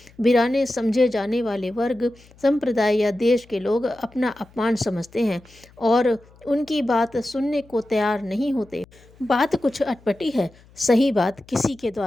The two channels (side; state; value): left; noise; hum, 27 dB below the sound